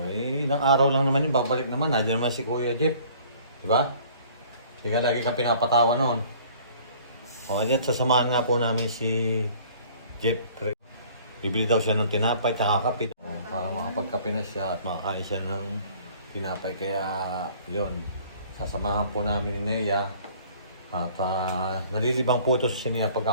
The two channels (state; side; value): inverted; both; correlation -0.53